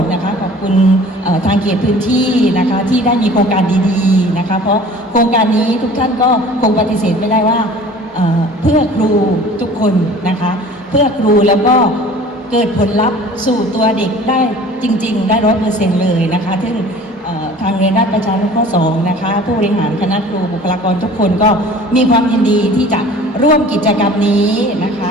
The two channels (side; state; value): both; normal; correlation 0.46